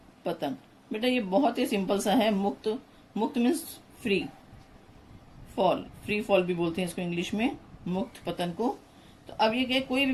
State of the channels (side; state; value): both; identical; correlation 1.00